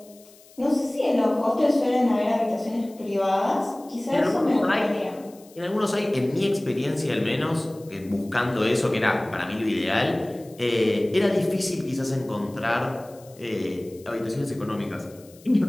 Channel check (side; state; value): left; noise; hiss, 25 dB below the sound